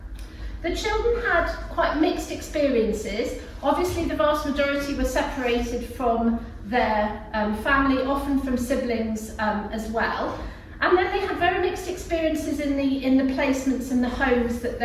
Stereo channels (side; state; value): both; identical; correlation 1.00